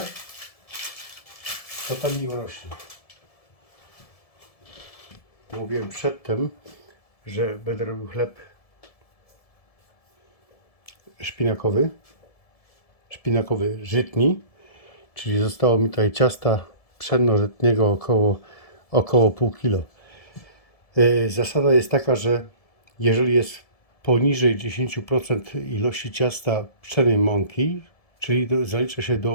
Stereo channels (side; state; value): right; late; 1.7 ms